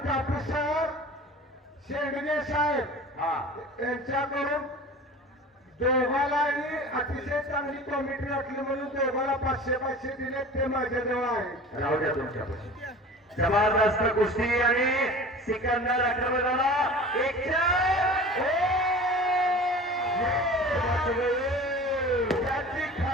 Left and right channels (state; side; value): normal; both; correlation 0.39